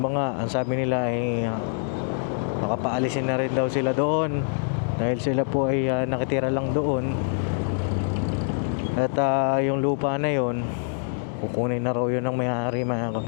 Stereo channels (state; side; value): silent; right; 62 dB below the other